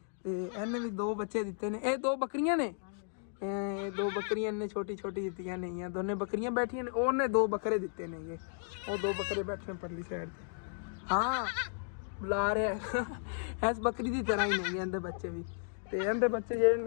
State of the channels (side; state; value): right; silent; digital silence